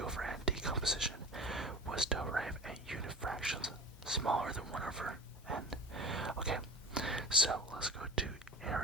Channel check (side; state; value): both; normal; correlation 0.32